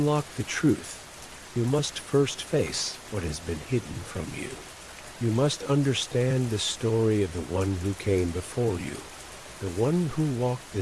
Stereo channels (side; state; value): both; identical; correlation 1.00